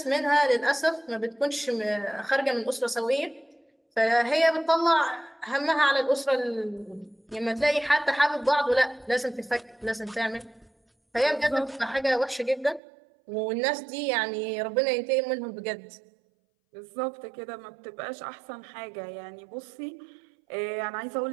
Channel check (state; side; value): drops out; left; at 12.8 s